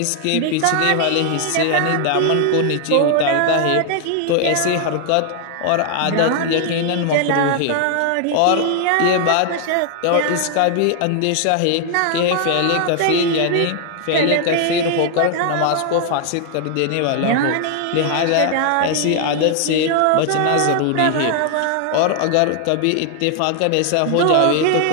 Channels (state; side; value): different; both; correlation 0.00